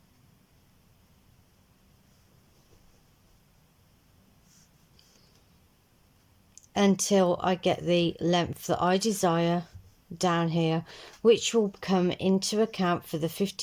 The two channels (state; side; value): identical; both; correlation 1.00